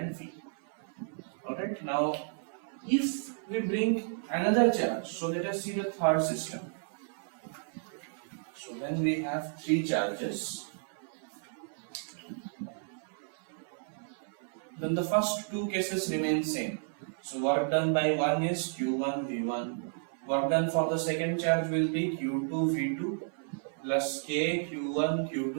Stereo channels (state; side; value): silent; left; 56 dB below the other